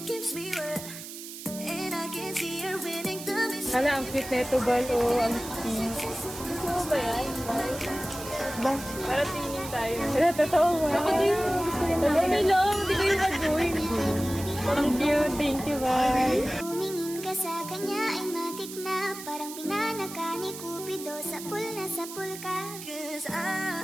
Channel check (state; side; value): noise; right; hiss, 11 dB below the sound